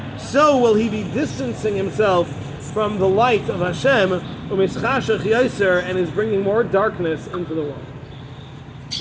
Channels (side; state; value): both; identical; correlation 1.00